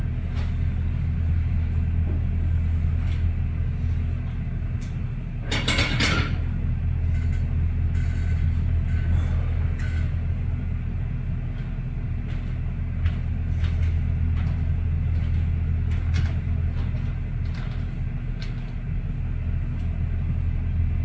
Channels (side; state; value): both; identical; correlation 1.00